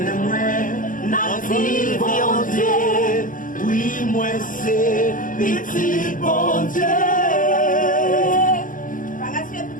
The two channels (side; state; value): right; late; 0.39 ms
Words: oui, moi c'est petit bon Dieu.